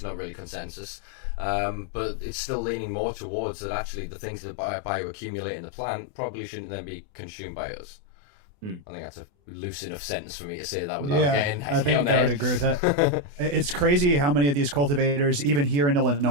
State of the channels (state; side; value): late; left; 28 ms